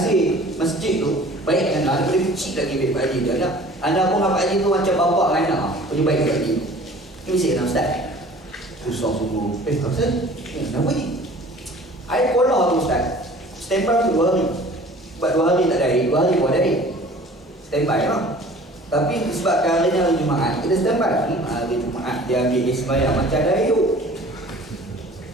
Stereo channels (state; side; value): normal; both; correlation 0.47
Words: masjid tu baik dengan anda boleh kecil lagi baik Pak Haji dia. Anda pun Pak Haji tu macam bapak dengan anak. Punya baik Pak Haji. Ini mesti kena Ustaz. Susah semua. Ustaz? Kenapa ni? Air kolah tu Ustaz. Standby tu 2 hari. Sebab 2 hari tak ada air, 2 hari buat air. Standby lah. Tapi sebabkan hari ni hari Jumaat, kita standby. Hari Jumaat dia ambil sembahyang macam ada air tu.